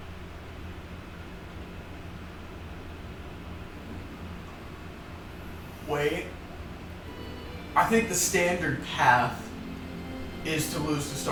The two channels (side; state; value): both; identical; correlation 1.00